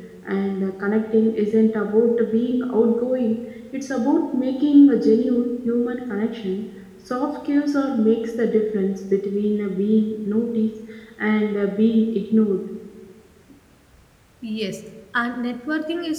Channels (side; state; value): both; identical; correlation 1.00